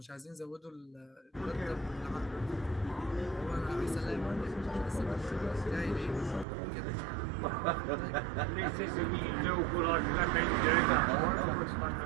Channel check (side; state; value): left; drops out; at 6.5 s